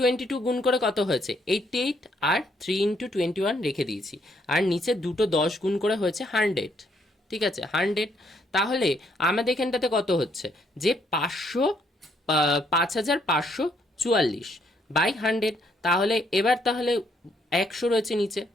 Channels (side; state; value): both; normal; correlation 0.71